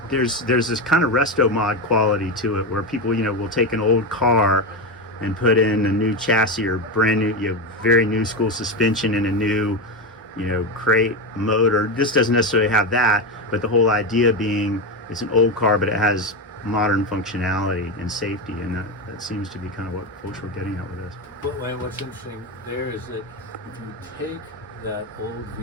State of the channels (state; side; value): normal; both; correlation 0.14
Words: there's this kind of resto mod quality to it, where people will take an old car and put in a new chassis or brand new very new school suspension and a new crate motor. This doesn't necessarily have that, but the whole idea being it's an old car but it has modern functionality and safety, and that seems to be kind of what folks were getting at with this. But what's interesting there is that if you take that old